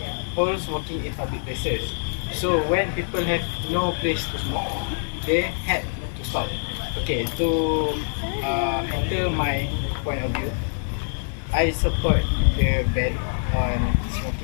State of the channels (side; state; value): right; silent; 62 dB below the other